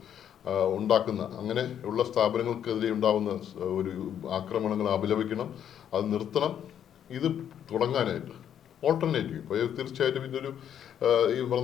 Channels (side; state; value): right; quieter; 9.5 dB